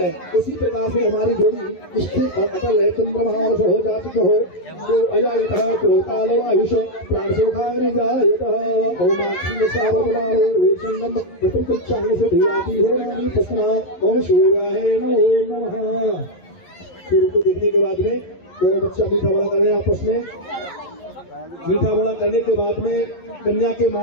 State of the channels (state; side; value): late; right; 11 ms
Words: उसी प्रकार से हमारी जोड़ी स्थिर और अटल है। चंद्रमा हो जात हो तो अजायतः कोतालो आयुष प्राणसोखानि जायतः ओमाक्षी सावर्तमानो वेशंगम प्रकृतिचांग से धियाति हो नानी तस्मा ओम सूर्याय नमो नमः। सूर्य को देखने के बाद में दोनों बच्चा मीठा बड़ा कर रहे हैं आपस में। मीठा बड़ा करने के बाद में कन्या के